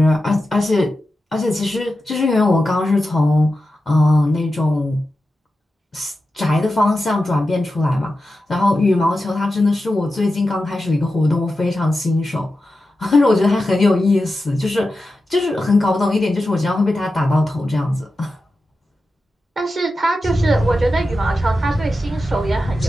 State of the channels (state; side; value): normal; both; correlation 0.91